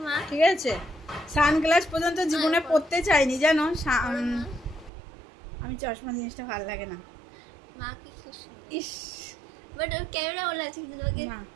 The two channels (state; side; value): drops out; left; at 4.9 s